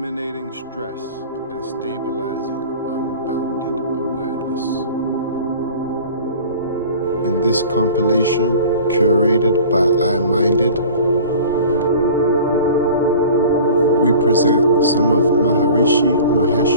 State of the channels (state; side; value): inverted; both; correlation -0.43